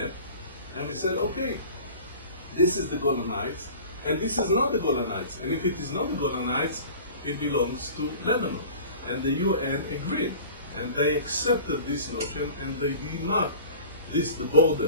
and we said, okay, this is the Golan Heights, and this is not the Golan Heights. And if it is not the Golan Heights, it belongs to Lebanon. And the UN agreed, and they accepted this notion, and they demarked the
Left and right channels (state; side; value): inverted; both; correlation -0.42